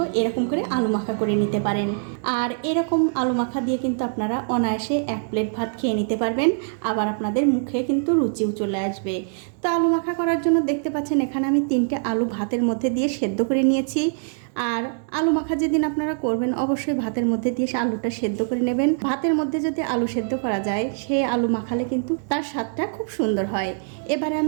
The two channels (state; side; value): silent; left; digital silence